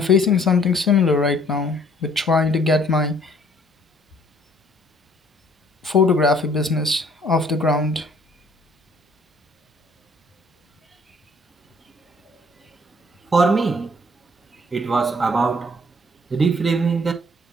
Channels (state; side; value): normal; both; correlation 0.60